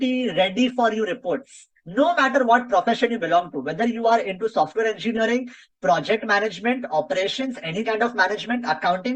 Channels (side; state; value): both; identical; correlation 1.00